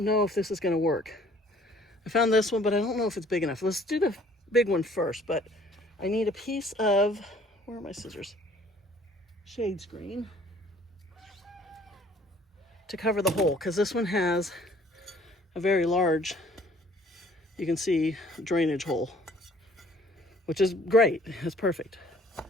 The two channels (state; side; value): normal; both; correlation 0.57